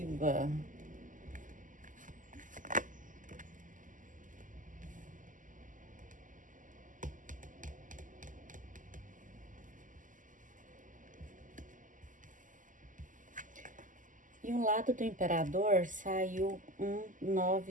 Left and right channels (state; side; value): late; left; 0.38 ms